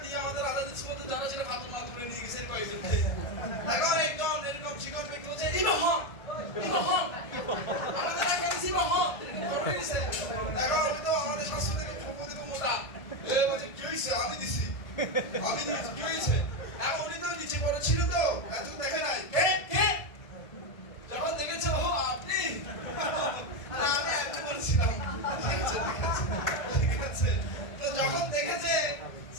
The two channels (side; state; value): right; late; 1.3 ms